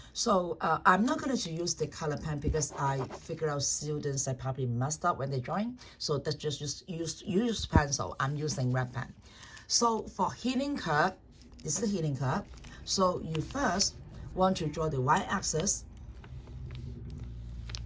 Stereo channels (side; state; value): both; identical; correlation 1.00